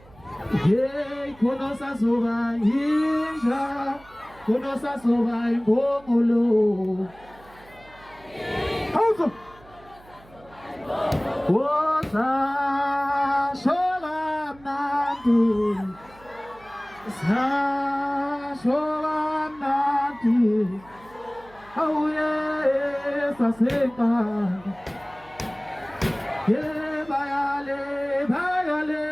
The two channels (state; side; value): noise; right; hum, 25 dB below the sound